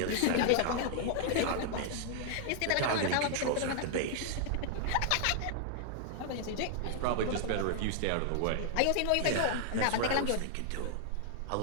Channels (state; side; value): different; both; correlation -0.01